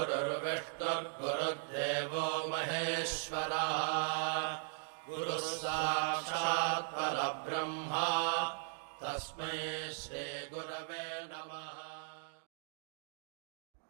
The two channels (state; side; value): silent; left; digital silence